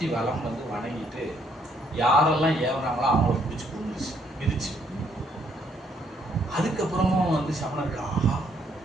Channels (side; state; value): both; normal; correlation 0.69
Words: வலம் வந்து வணங்கிட்டு யாரெல்லாம் ஏவனாங்களோ அவங்கள பிடிச்சி கொண்டுச்சு, மிதிச்சு. அதுக்கப்புறமும் வந்து சமணர்கள் ஆஹா